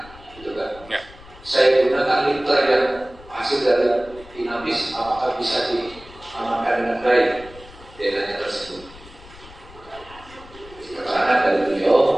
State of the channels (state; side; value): noise; left; rumble, 20 dB below the sound